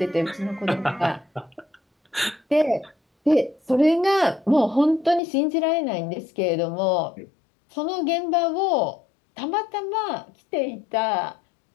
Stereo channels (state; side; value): drops out; right; at 5.2 s